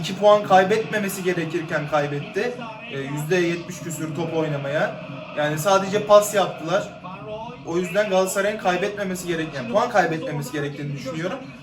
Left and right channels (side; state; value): both; identical; correlation 1.00